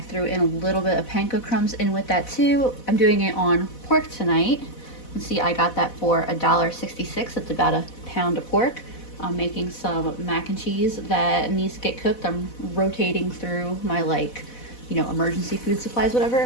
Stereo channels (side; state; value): right; late; 4.1 ms